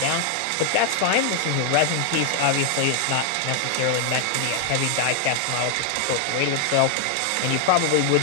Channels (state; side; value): different; both; correlation 0.00